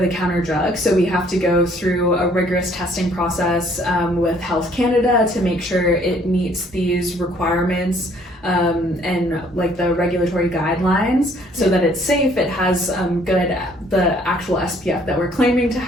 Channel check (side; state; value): both; normal; correlation 0.61